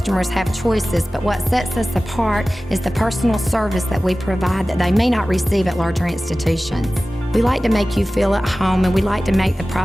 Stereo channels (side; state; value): both; normal; correlation 0.97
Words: have choices, but what sets us apart is the personal service that we provide that they may not receive at larger institutions. We like to make you feel at home, and we like to make the